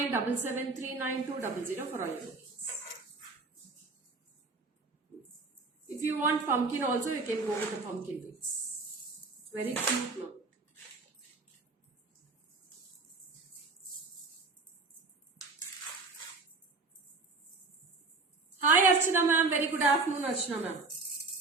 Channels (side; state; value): left; quieter; 3.9 dB